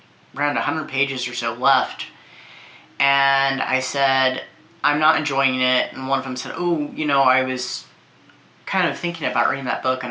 around 100 pages or so left, and I said, I'm not enjoying it, and one of them said, oh, I was kind of thinking about reading that book,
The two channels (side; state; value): both; identical; correlation 1.00